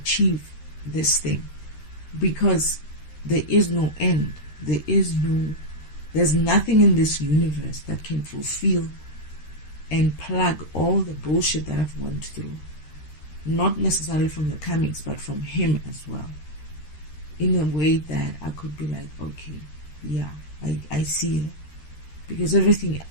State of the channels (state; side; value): late; right; 13 ms